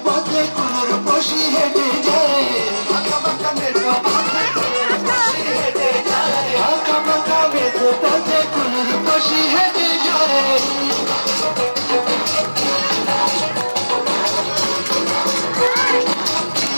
পথে কুনুর বসি হেঁটে যায় বাঁকা বাঁকা মেঠো পথে কুনুর বসি হেঁটে যায় বাঁকা বাঁকা মেঠো পথে কুনুর বসি হেঁটে যায়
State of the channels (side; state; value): both; inverted; correlation -1.00